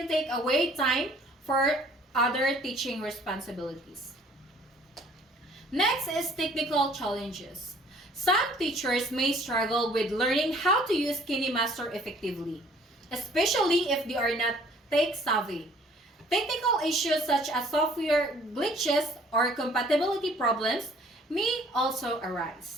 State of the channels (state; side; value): normal; both; correlation 0.56